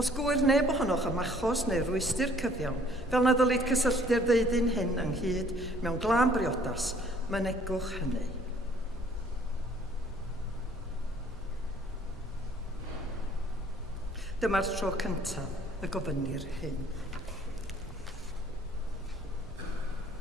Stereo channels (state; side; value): normal; both; correlation 0.59